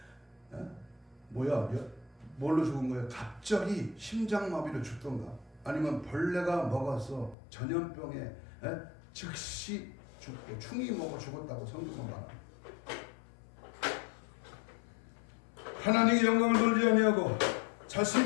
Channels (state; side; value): drops out; right; at 7.4 s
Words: 뭘로 죽은 거예요? 갑자기 심장마비로 죽던가 아니면 벌레가 먹어서 전염병에 즉시 죽고 충이 먹어 죽었다고 성경은 말합니다. 하나님의 영광을 돌리지 아니하고